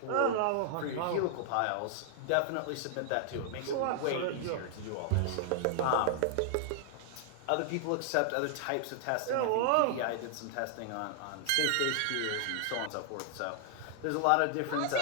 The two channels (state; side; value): different; both; correlation 0.00